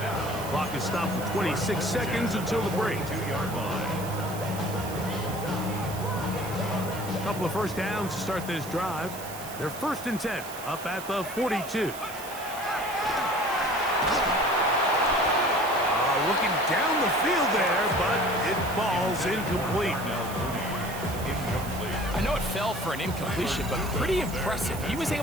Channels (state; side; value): noise; right; hiss, 13 dB below the sound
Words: Clock is stopped for 26 seconds until the break. 2-yard line. A couple of first downs to start this drive. They're 1st and 10, up at the 42. Looking down the field there, but it falls incomplete. I know it fell for an incompletion, but pretty impressive. He was